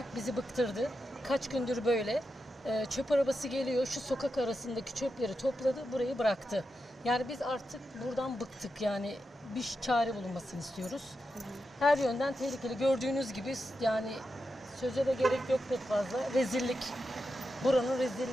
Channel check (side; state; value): both; normal; correlation 0.88